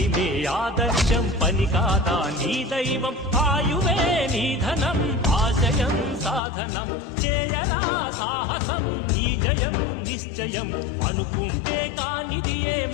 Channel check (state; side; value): drops out; right; at 6.4 s